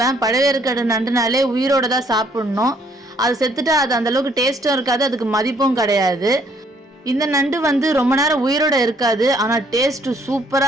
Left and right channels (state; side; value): normal; both; correlation 0.65